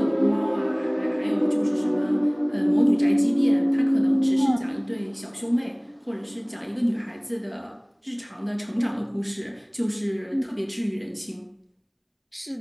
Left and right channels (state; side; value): identical; both; correlation 1.00